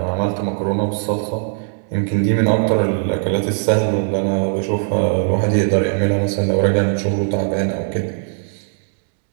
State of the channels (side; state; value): left; silent; 66 dB below the other